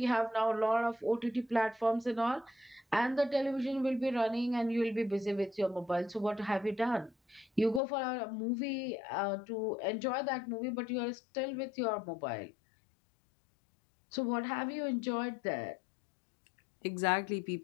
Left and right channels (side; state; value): right; drops out; at 7.8 s